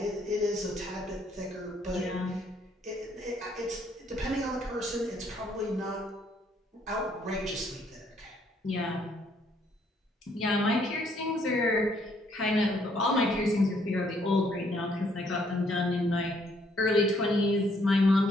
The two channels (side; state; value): both; normal; correlation 0.68